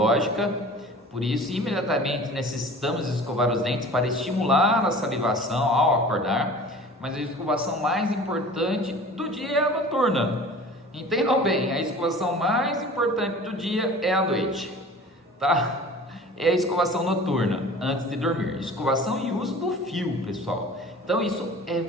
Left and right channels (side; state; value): both; normal; correlation 0.42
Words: Por isso, imediatamente necessitamos escovar os dentes para estimular a salivação ao acordar. Mas a escovação mais importante do dia é a noturna. Entendam bem, a escovação mais importante do dia é à noite, tá? É a escovação noturna, antes de dormir. Escovação e uso do fio, pessoal. Então isso é